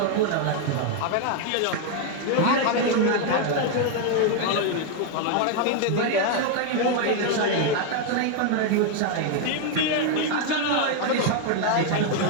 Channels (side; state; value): both; different; correlation 0.01